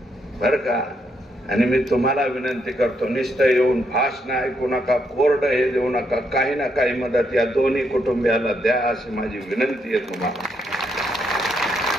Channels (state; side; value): normal; both; correlation 0.77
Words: बर का. आणि मी तुम्हाला विनंती करतो, नुसतं येऊन भाषण ऐकू नका, कोरडं हे देऊ नका, काही ना काही मदत या दोन्ही कुटुंबियाला द्या अशी माझी विनंती आहे तुम्हाला.